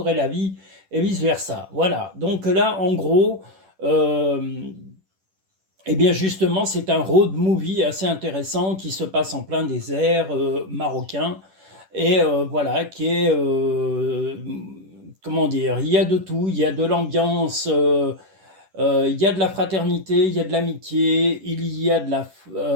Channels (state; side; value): late; left; 10 ms